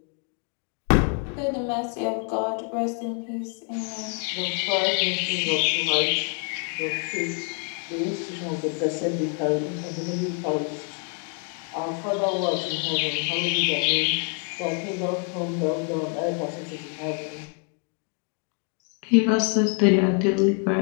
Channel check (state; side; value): quieter; right; 36.6 dB